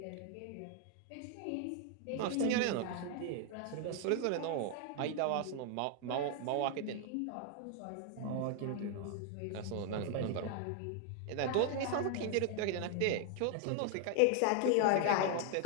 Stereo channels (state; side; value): different; both; correlation 0.00